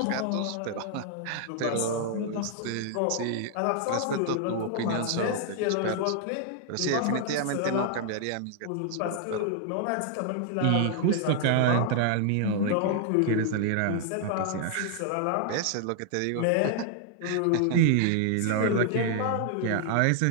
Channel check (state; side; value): different; both; correlation 0.00